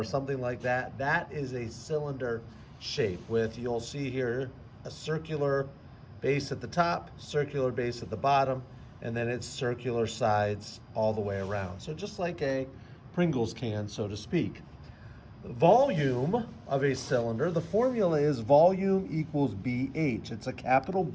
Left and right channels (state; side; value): identical; both; correlation 1.00